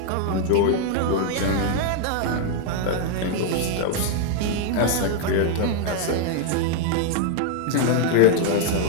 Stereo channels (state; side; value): different; both; correlation 0.00